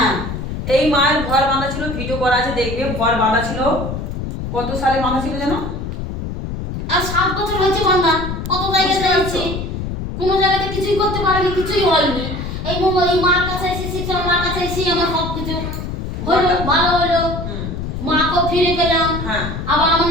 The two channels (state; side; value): noise; left; rumble, 5 dB below the sound